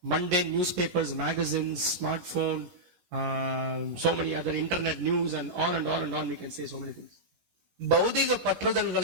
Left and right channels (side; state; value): left; late; 17 ms